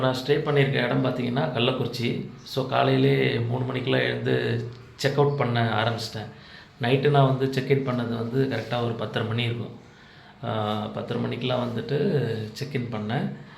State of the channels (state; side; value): identical; both; correlation 1.00